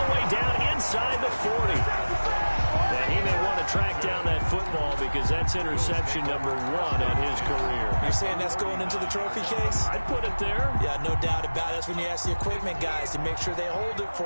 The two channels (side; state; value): both; inverted; correlation -1.00